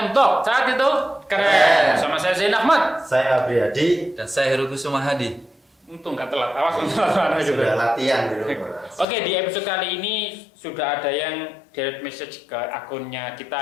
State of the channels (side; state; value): right; drops out; at 9.1 s